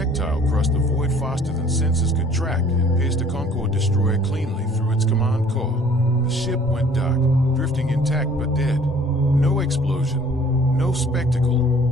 crossed the void faster than sensors could track and pierced a Concorde destroyer cleanly through its command core. The ship went dark, drifting intact but dead. No explosion, no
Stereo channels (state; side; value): normal; both; correlation 0.54